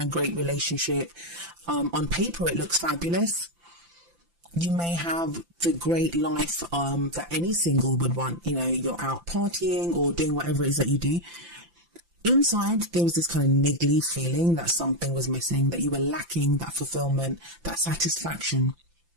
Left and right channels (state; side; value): late; left; 5.9 ms